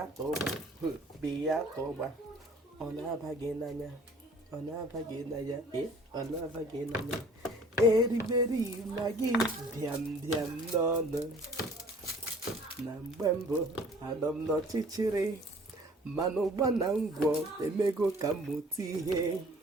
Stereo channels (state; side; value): normal; both; correlation 0.52